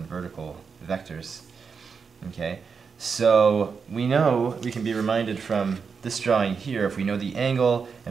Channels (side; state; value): left; quieter; 5.7 dB